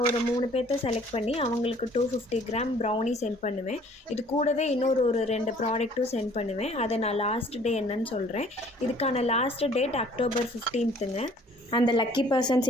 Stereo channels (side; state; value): both; normal; correlation 0.56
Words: ஒரு 3 பேர்த்த செலக்ட் பண்ணி அவங்களுக்கு 250 கிராம் ப்ரௌனி சென்ட் பண்ணுவேன். இது கூடவே இன்னொரு 2 ப்ராடக்ட்டும் சென்ட் பண்ணுவேன். அதை நான் லாஸ்ட் டே என்னன்னு சொல்கிறேன். இதுக்கான லாஸ்ட் டேட் அக்டோபர் 15ங்க. அந்த லக்கி பர்சன்ஸ்